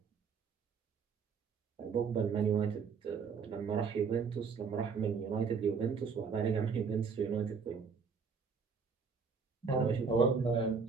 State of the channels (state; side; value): quieter; left; 5.6 dB